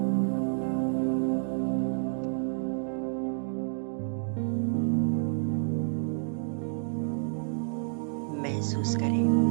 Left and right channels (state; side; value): silent; left; digital silence